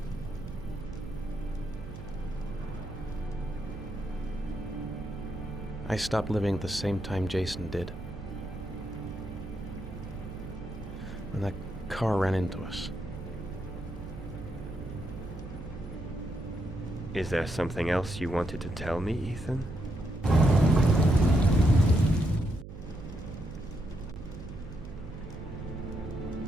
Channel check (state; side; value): noise; right; hum, 12 dB below the sound